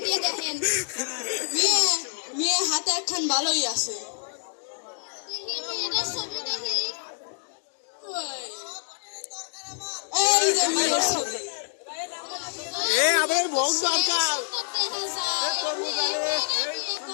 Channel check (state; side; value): silent; right; digital silence